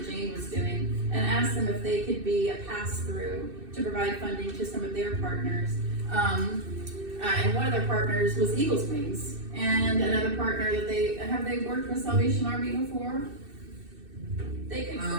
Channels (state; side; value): late; left; 2.6 ms